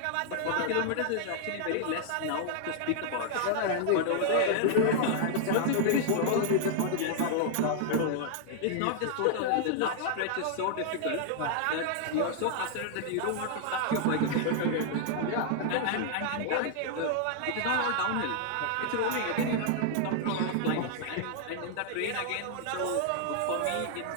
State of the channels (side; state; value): both; different; correlation -0.01